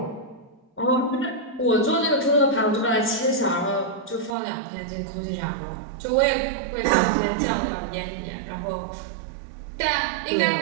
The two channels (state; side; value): drops out; left; at 4.4 s